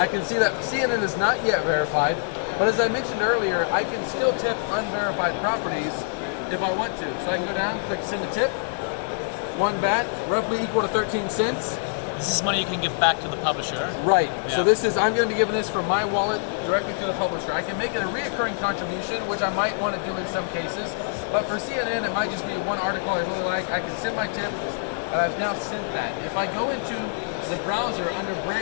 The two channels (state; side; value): silent; right; 62 dB below the other